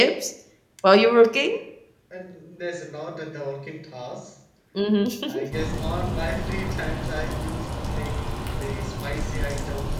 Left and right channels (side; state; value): both; identical; correlation 1.00